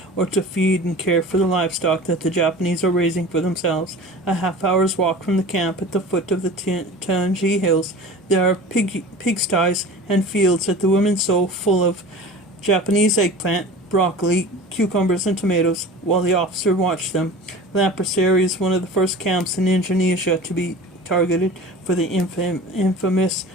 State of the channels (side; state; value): both; normal; correlation 0.38